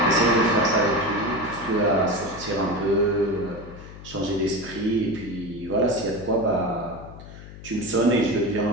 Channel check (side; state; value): left; noise; hum, 15 dB below the sound